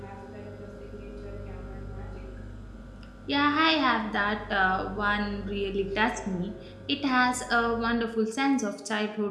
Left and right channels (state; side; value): identical; both; correlation 1.00